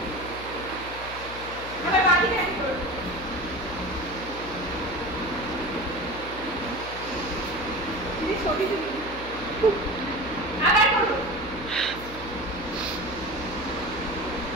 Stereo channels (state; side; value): noise; left; hum, 13 dB below the sound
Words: আবার বাকি হাঁটি করো দিদি ছবি তুলি আবার করো